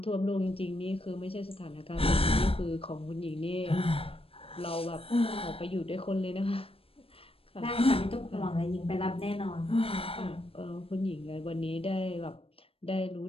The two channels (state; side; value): late; right; 0.27 ms